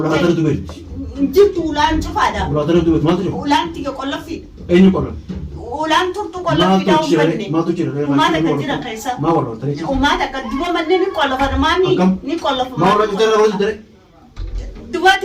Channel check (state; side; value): identical; both; correlation 1.00